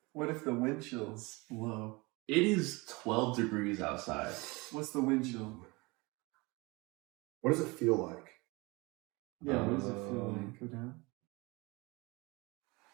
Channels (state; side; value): quieter; left; 25.1 dB